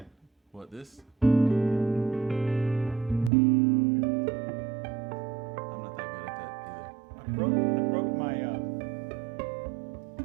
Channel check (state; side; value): drops out; left; at 3.3 s